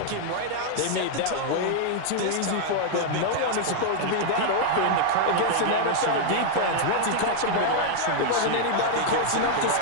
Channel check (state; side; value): different; both; correlation 0.00